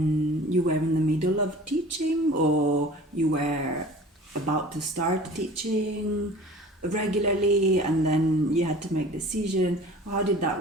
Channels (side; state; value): both; normal; correlation 0.44